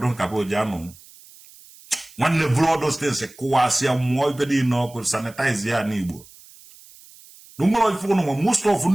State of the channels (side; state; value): right; noise; hiss, 23 dB below the sound